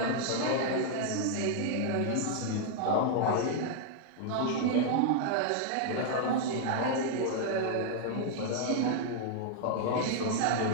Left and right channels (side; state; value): both; different; correlation 0.00